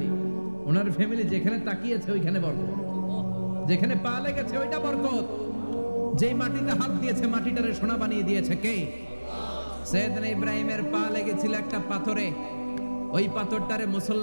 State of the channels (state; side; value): inverted; both; correlation -1.00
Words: ওনার ফ্যামিলি যেখানে তাকিয়েছে ওইখানে বরকত, যেখানে পা লেগেছে ওইটা বরকত। যেই মাটিতে হাত দিয়েছে মাটিটারে সোনা বানিয়ে দিয়েছে কে? সৈয়দনা ইব্রাহিমের পা লেগেছিল একটা পাথরে, ওই পাথরটারে